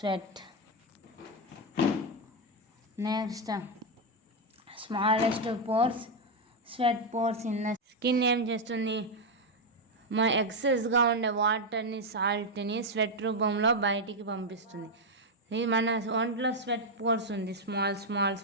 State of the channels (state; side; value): normal; both; correlation 0.03